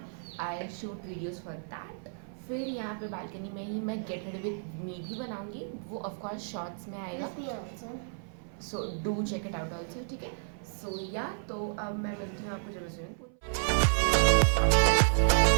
I shoot videos for that. फिर यहाँ पे बालकनी में ही मैं गेट रेडी विद मी भी बनाऊंगी, वो ऑफकोर्स शॉर्ट्स में आएगा, so do check it out also. ठीक है, सो या तो अब मैं मिलती हूँ आपको जब मैं स्विमिंग पूल में।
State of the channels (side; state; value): left; silent; 57 dB below the other